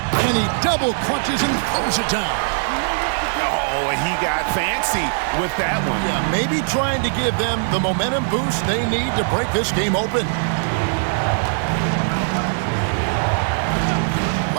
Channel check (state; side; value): silent; left; digital silence